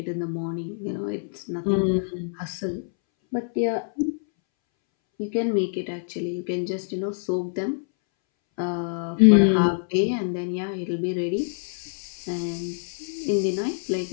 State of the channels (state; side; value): silent; right; 61 dB below the other